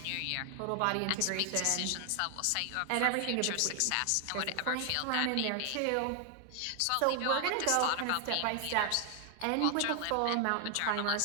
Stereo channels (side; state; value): both; different; correlation 0.00